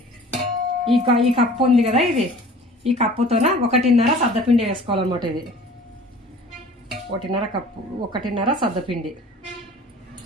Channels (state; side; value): normal; both; correlation 0.46